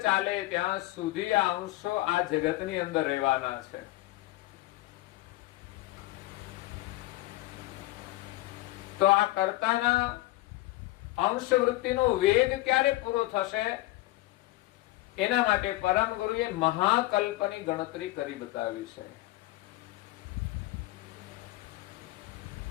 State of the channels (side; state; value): right; quieter; 18.5 dB